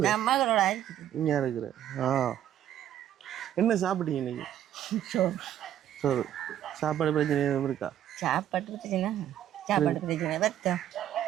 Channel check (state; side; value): quieter; left; 11.2 dB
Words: நான் மகளோட இங்கே இருக்கிறேன். ஆ என்ன சாப்பிட்டீங்க இன்னைக்கு? சோறு. சாப்பாடு பிரச்சனை எதுவும் இருக்கா? சாப்பாடு பிரச்சனை சாப்பாடு பிரச்சனை வருத்தம்